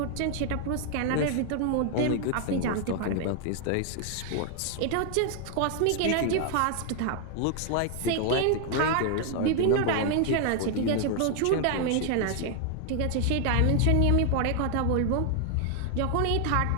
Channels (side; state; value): both; different; correlation 0.00